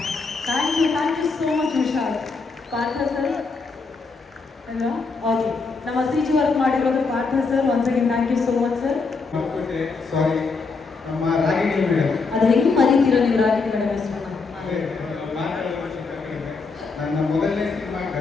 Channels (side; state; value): right; quieter; 4.4 dB